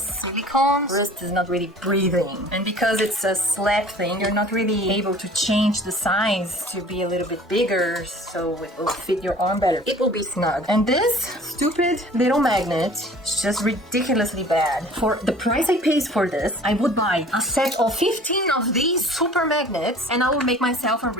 Wrist is not really breathing. And because it's a slap thing, you're not really able to change the size to be a little bit bigger so it will fit your arm better. It will be snug. And this stupid little magnet is just ridiculously bad. For the price I paid for this, I would buy a set of 15 of these super magnets and I will make myself a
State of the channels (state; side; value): normal; both; correlation 0.47